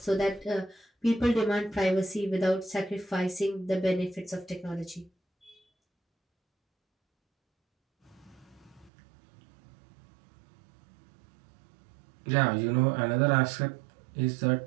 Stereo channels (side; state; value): left; drops out; at 8.9 s